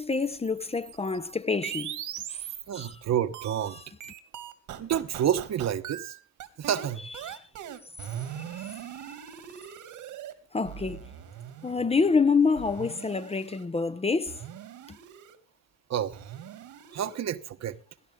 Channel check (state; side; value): normal; both; correlation 0.44